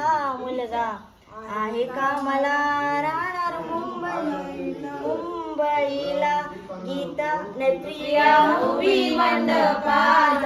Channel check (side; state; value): both; identical; correlation 1.00